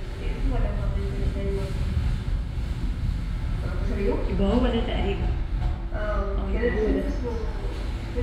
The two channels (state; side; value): identical; both; correlation 1.00